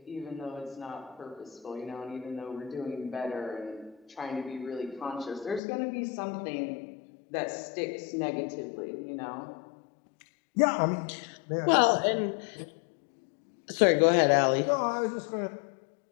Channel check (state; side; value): drops out; right; at 5.6 s